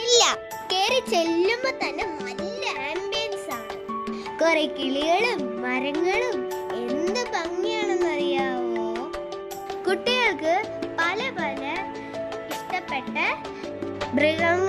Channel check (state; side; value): identical; both; correlation 1.00